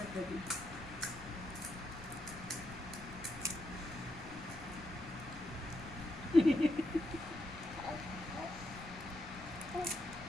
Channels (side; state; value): left; noise; rumble, 15 dB below the sound